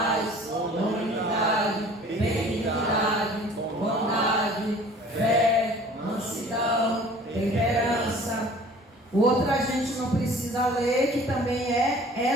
unidade, benignidade, bondade, fé, mansidão, temperança. O outro a gente não precisa ler, que também é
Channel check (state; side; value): normal; both; correlation 0.48